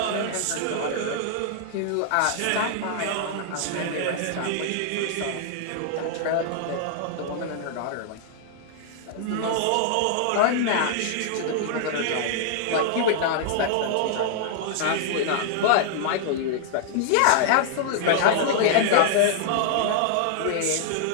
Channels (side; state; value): both; different; correlation -0.01